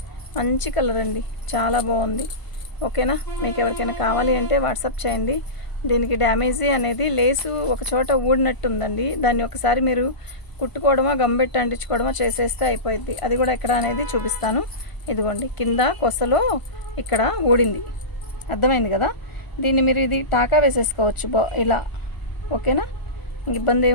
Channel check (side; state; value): right; late; 1.0 ms